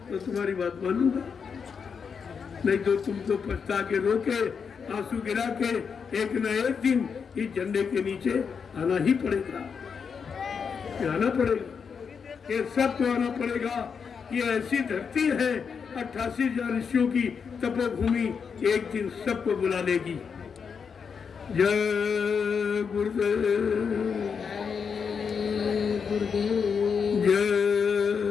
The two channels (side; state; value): right; quieter; 6.2 dB